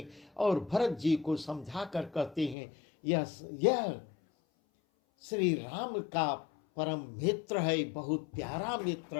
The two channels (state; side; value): drops out; right; at 2.6 s